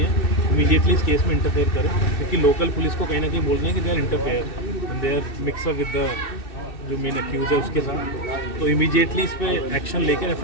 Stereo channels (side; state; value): right; late; 2.6 ms